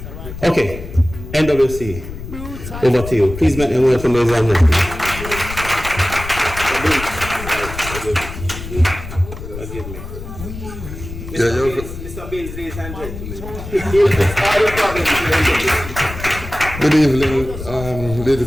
Okay, NWC, over to you. Please make them welcome, ladies and gentlemen. Mr. Bills, ladies and gentlemen. Good evening,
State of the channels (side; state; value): left; noise; rumble, 10 dB below the sound